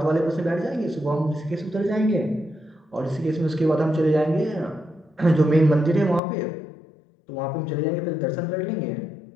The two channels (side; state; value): right; drops out; at 6.2 s